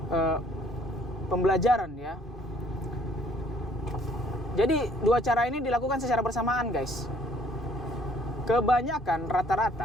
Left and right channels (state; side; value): normal; both; correlation 0.60